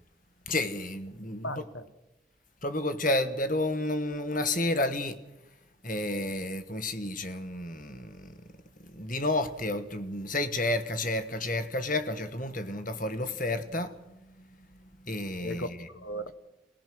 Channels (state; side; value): normal; both; correlation 0.30